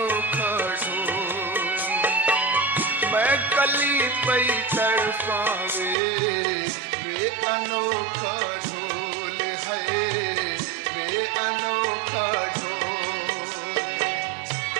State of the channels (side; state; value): left; drops out; at 6.0 s